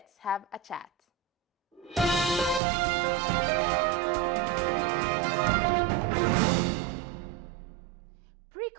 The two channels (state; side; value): drops out; left; at 2.6 s